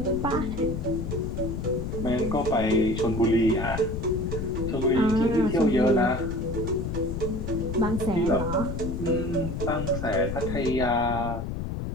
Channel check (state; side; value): noise; left; rumble, 4 dB below the sound